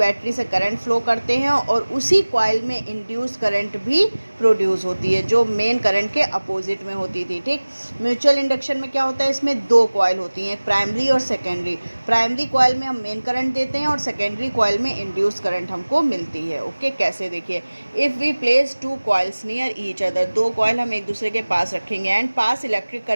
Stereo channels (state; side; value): inverted; both; correlation -1.00